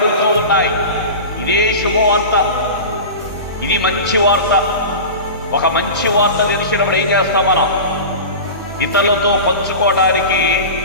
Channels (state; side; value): inverted; both; correlation -0.31